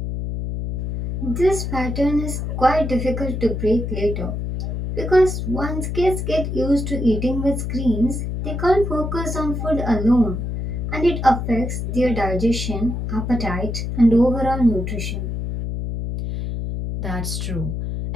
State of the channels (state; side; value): noise; left; hum, 3 dB below the sound